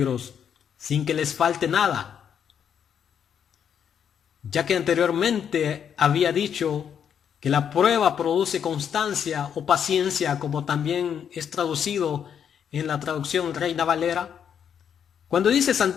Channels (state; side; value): quieter; right; 8.2 dB